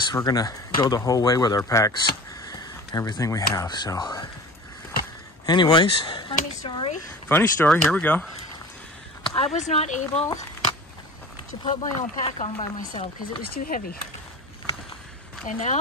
We're gonna go the whole way with our packs, everything we have. So anyways, funny story, here we go. I was not able to put my own pack on by myself because it was too heavy. And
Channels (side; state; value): both; normal; correlation 0.38